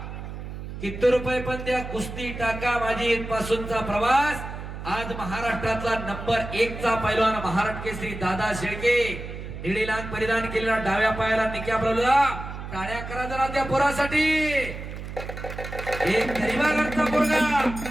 किती रुपये पण त्या कुस्ती टाका माझी इथपासूनचा प्रवास. आज महाराष्ट्रातला नंबर 1 चा पैलवान महाराष्ट्र केसरी दादा शेळके. निळी लांग परिधान केलेला, डाव्या पायाला निक्या बरोबर. टाळ्या करा जरा त्या पोरासाठी. एक गरीबागडचा पोरगा.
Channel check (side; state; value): right; noise; hum, 9 dB below the sound